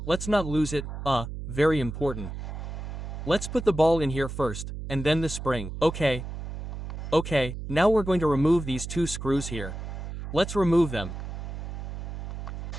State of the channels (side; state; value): right; noise; hum, 7 dB below the sound